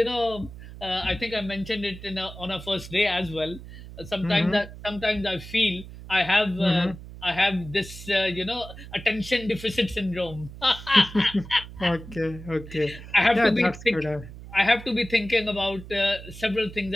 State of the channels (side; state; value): right; noise; hum, 14 dB below the sound